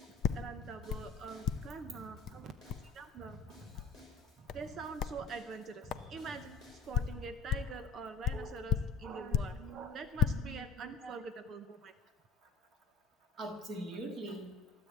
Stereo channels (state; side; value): quieter; right; 5.2 dB